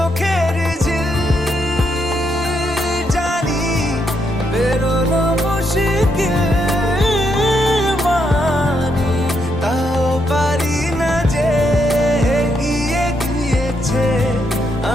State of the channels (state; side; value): normal; both; correlation 0.78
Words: ঝিল জানি বেরোনো মুশকিল মানি তাও পারি না যে এগিয়ে গিয়েছে